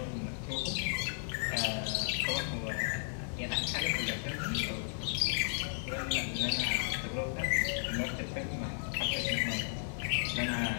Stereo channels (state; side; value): silent; right; digital silence